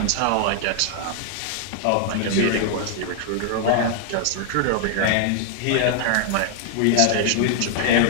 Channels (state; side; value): different; both; correlation 0.00